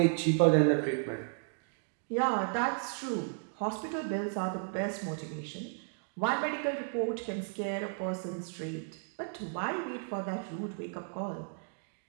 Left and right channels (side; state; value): left; silent; digital silence